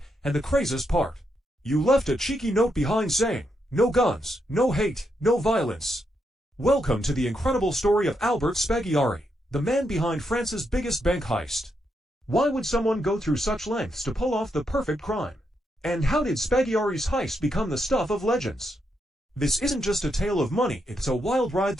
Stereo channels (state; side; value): normal; both; correlation 0.81